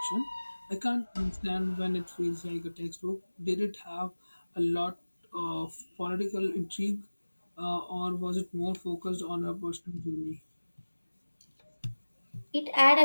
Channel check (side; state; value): both; inverted; correlation -1.00